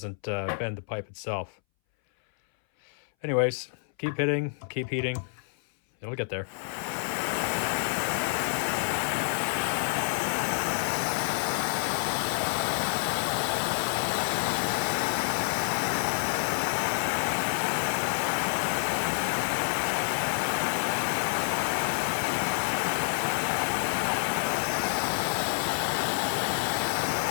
bend the pipe itself. Anyways, keep hitting, keep heating. It'll get there.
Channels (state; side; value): silent; right; 59 dB below the other